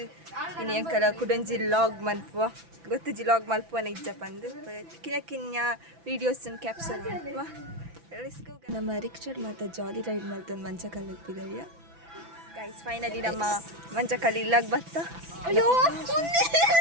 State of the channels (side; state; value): left; late; 6.0 ms